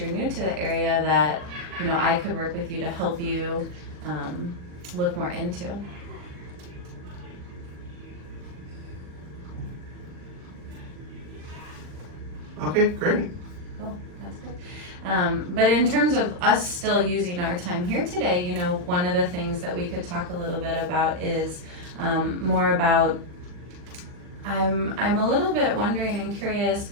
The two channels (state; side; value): late; left; 40 ms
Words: new to the area, that, you know, I could work with you to help you look more into. Okay, great. Cool, that's good. But in terms of us still using our time here today, you know, one of the things that we could talk a little bit about is more about, I'm a little bit wondering and curious,